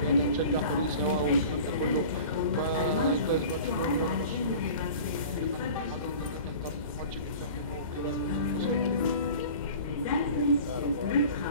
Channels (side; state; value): both; inverted; correlation -0.40